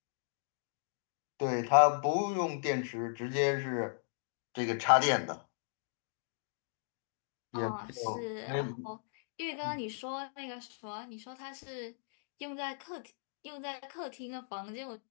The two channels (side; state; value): right; silent; digital silence